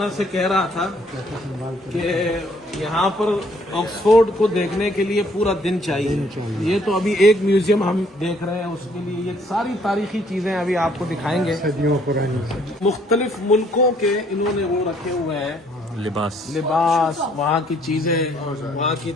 سے کہہ رہا تھا کہ یہاں پر آکسفورڈ کو دیکھنے کے لیے پورا دن چاہیے. یہ تو ابھی ایک میوزیم ہم دیکھ رہے ہیں, اس کے لیے یہ ساری تاریخی چیزیں ابھی آپ کو دکھائیں گے. صدیوں پرانی مختلف ملکوں کے انہوں نے وہ رکھے ہوئے ہیں, لباس. وہاں کی چیزیں, وہاں کی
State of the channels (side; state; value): both; normal; correlation 0.64